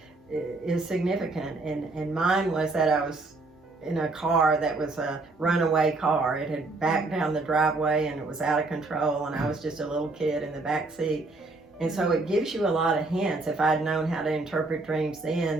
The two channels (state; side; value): quieter; left; 3.3 dB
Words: is significant. And mine was that I was in a car that was a runaway car. It had backed down the driveway and it was out of control, and I was just a little kid in the back seat. And so it gives you a lot of hints. If I'd known how to interpret dreams